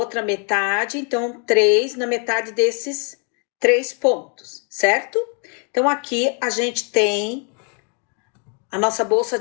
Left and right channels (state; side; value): quieter; right; 38.2 dB